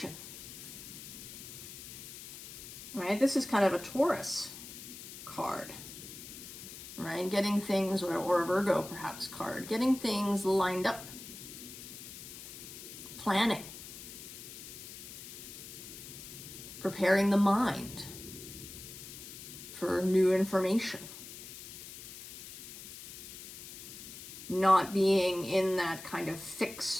Right? This is kind of a Taurus card. Right? Getting things, or a Virgo perhaps card, getting things lined up. Planning. Preparing the mind for new information. Not being in that kind of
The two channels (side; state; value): left; noise; hiss, 12 dB below the sound